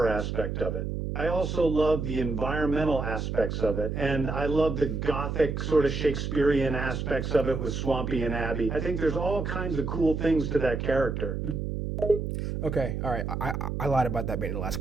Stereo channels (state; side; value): noise; right; hum, 3 dB below the sound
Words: aspect of it. I also love the environmental aspects of it, and I love the gothic sort of Shakespearean aspects of it with Swampy and Abby. I think there's all kinds of cool things to that character. Okay, all right. I lied about that being the last